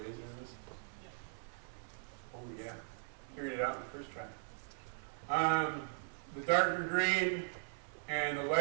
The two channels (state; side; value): silent; left; 52 dB below the other